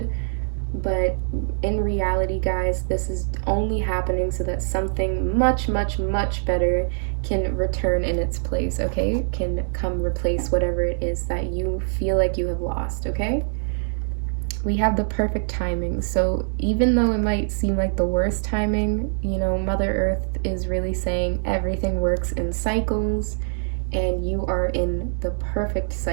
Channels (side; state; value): left; silent; 63 dB below the other